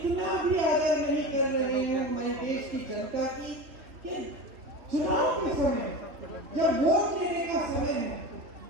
भी आदर नहीं कर रहे हैं हमारे देश की जनता की कि चुनाव के समय जब वोट लेने का समय है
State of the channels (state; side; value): late; left; 3.1 ms